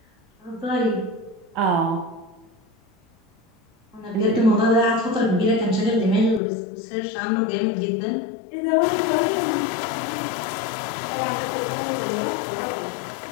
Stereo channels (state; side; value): drops out; right; at 6.4 s